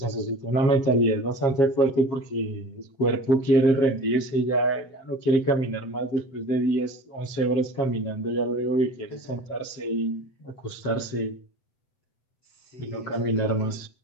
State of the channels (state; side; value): late; right; 7.5 ms